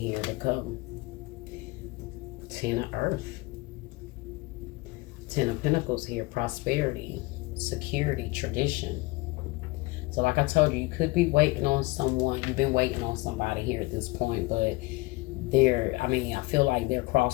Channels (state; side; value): quieter; right; 22.7 dB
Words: to come. Ten of Earth. Ten of Pentacles here. Prosperity, security, tradition. So like I told you, you could be waiting on someone. You've been waiting on somebody here at this point, but I feel like they're